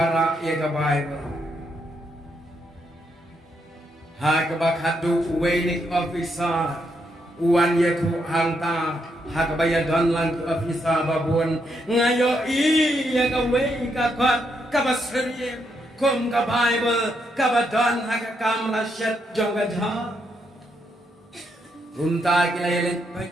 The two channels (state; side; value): normal; both; correlation 0.78